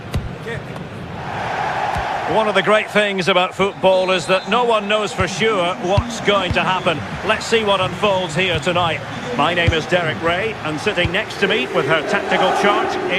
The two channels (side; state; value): both; identical; correlation 1.00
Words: One of the great things about football is that no one knows for sure what's going to happen. Let's see what unfolds here tonight. My name is Derek Ray, and sitting next to me with her tactical chart